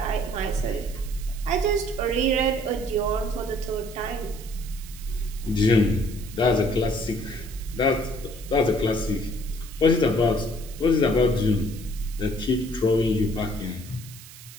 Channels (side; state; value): right; noise; hiss, 17 dB below the sound